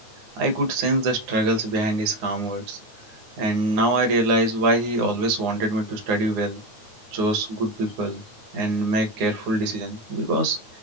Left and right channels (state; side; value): late; left; 9.6 ms